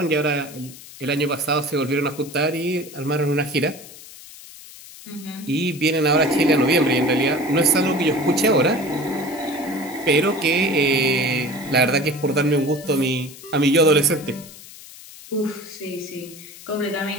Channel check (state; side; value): noise; left; hiss, 17 dB below the sound